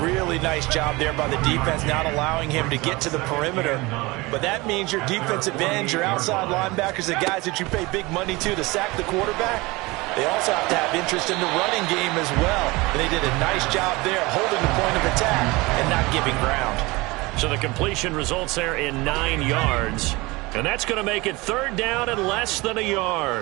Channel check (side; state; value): left; quieter; 22.9 dB